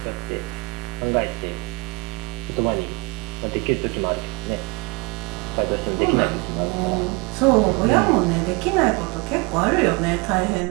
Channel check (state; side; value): quieter; left; 28.9 dB